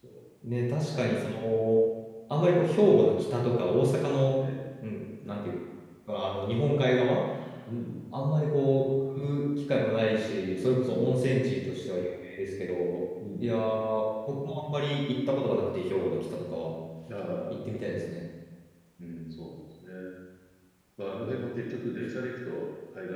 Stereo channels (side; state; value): both; identical; correlation 1.00